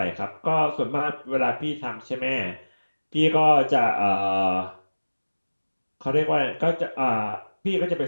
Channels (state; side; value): inverted; both; correlation -1.00